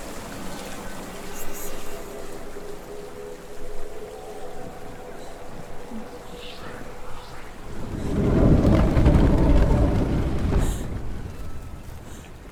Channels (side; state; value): both; identical; correlation 1.00